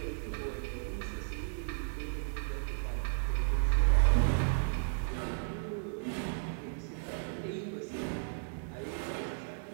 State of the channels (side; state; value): left; silent; digital silence